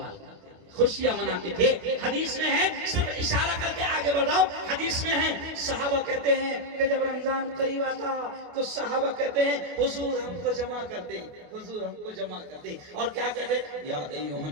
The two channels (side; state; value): left; late; 28 ms